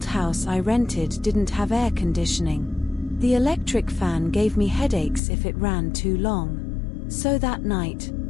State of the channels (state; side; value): drops out; right; at 5.2 s